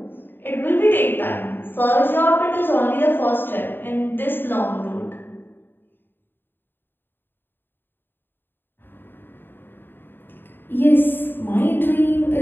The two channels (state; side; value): late; right; 0.097 ms